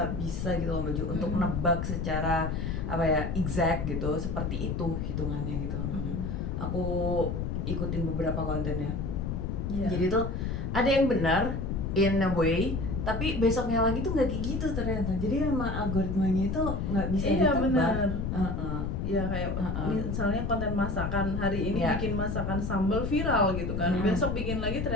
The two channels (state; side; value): noise; left; rumble, 2 dB below the sound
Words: bisa gitu loh Mbak Ju, untuk menebak secara apa ya exact gitu, seperti itu hitungannya gitu loh Mbak Ju. Aku ikutin beberapa kontennya. Jadi tuh ada yang benar in a way, tapi besoknya lagi tuh nggak kayak gitu ternyata. Jadi memang algoritmanya itu nggak bisa ditebak. Ya kayak misalnya konten masakan hari ini bikin masakan sambal viral gitu kan, besok bikin lagi